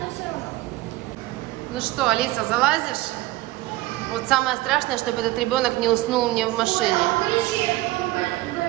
все равно. Ну что, Алиса, залазишь? Вот самое страшное, чтобы этот ребенок не уснул мне в машине.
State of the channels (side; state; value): left; quieter; 18.2 dB